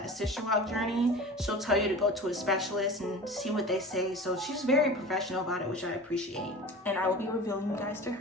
Sisterlock journey, she'll tell you to go to a specialist and see what they say. So she's very professional about it, which I appreciate. And I will be revealing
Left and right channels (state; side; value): normal; both; correlation 0.36